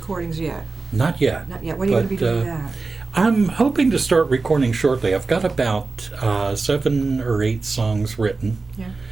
yet. Not yet. Not yet. When are you going to be doing that? I'm hoping to start recording shortly. I've got about 7 or 8 songs written. Yeah.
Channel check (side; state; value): left; quieter; 3.9 dB